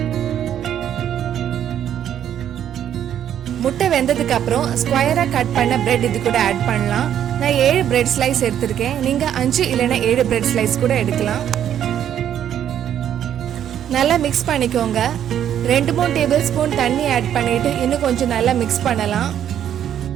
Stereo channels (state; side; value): quieter; left; 10.1 dB